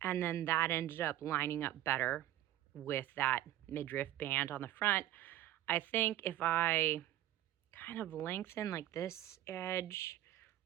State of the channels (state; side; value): quieter; left; 13.6 dB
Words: And then that ended up lining up better with that midriff band on the front. I think if I kind of lengthen like this edge